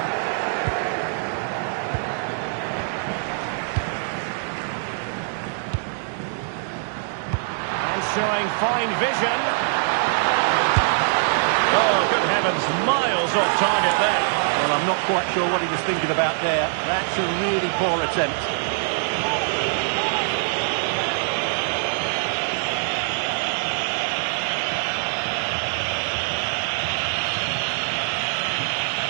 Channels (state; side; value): silent; left; digital silence